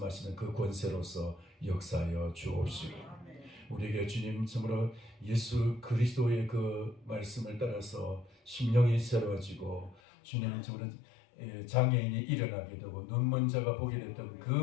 그 권세로서 역사하여 주옵시고, 우리에게 주님 정말로 예수 그리스도의 그 말씀을 따라서 심령이 새로워지고, 주님 정말 장애인이 일어나게 되고 눈먼 자가 보게 됐던 그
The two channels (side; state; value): right; drops out; at 10.0 s